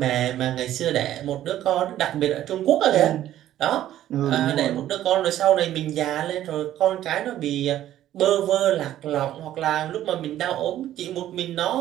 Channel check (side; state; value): left; quieter; 12.6 dB